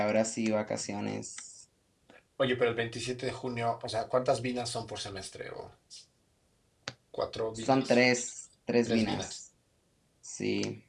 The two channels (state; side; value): identical; both; correlation 1.00